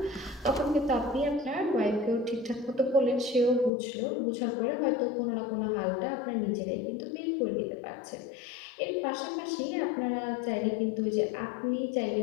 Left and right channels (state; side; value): drops out; right; at 3.7 s